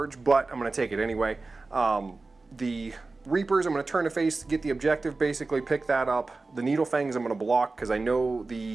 but I'm going to take it anyway. The Reapers, I'm going to turn to face to get the objective, basically pick that up. The Needle Fangs I'm going to block because I know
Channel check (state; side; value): quieter; left; 3.6 dB